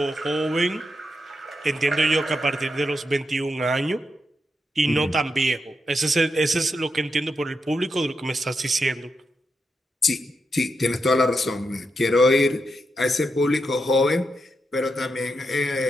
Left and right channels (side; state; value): both; normal; correlation 0.85